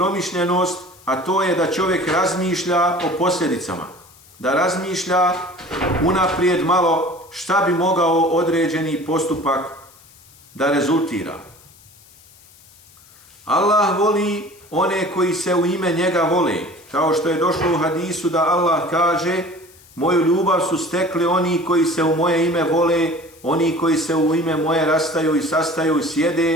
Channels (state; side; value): noise; left; hiss, 26 dB below the sound